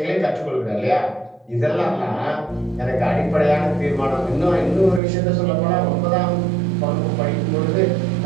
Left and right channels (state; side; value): drops out; left; at 5.0 s